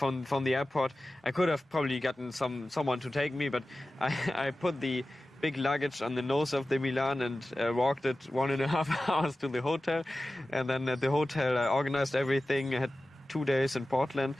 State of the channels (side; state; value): both; normal; correlation 0.95